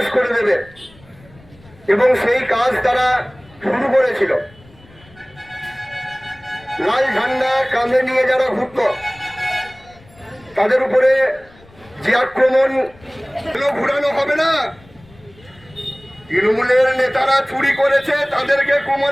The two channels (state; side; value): noise; left; rumble, 26 dB below the sound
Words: করে দেবে এবং সেই কাজ তারা শুরু করেছিল। লাল ঝান্ডা কাঁধে নিয়ে যারা ঘুরত তাদের উপরে যে আক্রমণ ঘুরানো হবে না। তৃণমূলের নেতারা চুরি করেছে, তাদেরকে